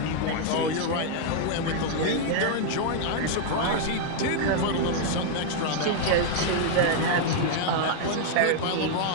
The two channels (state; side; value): different; both; correlation 0.00